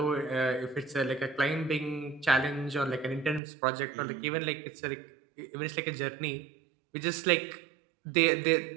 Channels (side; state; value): left; drops out; at 3.4 s